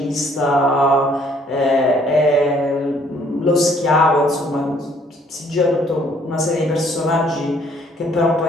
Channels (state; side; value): normal; both; correlation 0.62